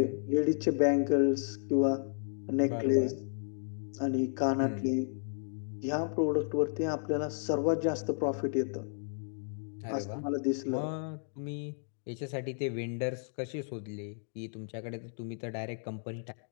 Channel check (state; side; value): silent; right; digital silence